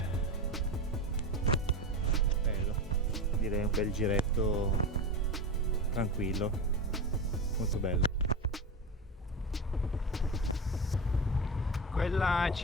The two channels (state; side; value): normal; both; correlation 0.22